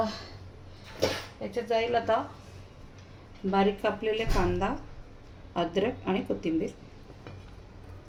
याच्यात जाईल आता बारीक कापलेले कांदा, अद्रक आणि कोथिंबीर.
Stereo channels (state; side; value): identical; both; correlation 1.00